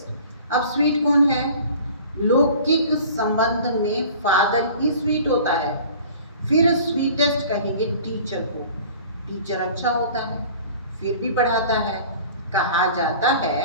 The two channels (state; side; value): inverted; both; correlation -0.45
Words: अब स्वीट कौन है? लौकिक संबंध में फादर ही स्वीट होता है। फिर स्वीटेस्ट कहेंगे टीचर को। टीचर अच्छा होता है, फिर भी पढ़ाता है। कहा जाता